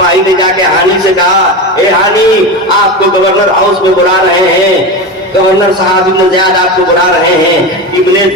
ने जाके हानी से कहा, ए हानी आपको गवर्नर हाउस में बुला रहे हैं, गवर्नर साहब इब्न ज़ियाद आपको बुला रहे हैं। इब्न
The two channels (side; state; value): both; normal; correlation 0.22